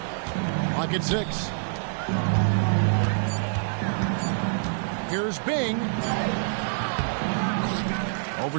Clock at 6. Here's Bing.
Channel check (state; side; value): silent; left; 61 dB below the other